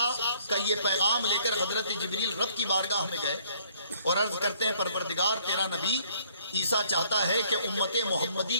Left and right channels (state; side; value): inverted; both; correlation -0.62